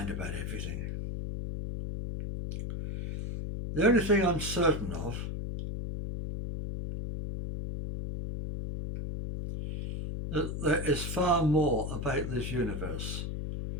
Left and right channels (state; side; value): noise; left; hum, 4 dB below the sound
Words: about everything. The only thing I'm certain of that there is far more about this universe